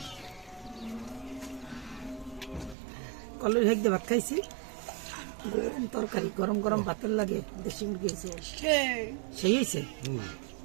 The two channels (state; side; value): drops out; left; at 2.8 s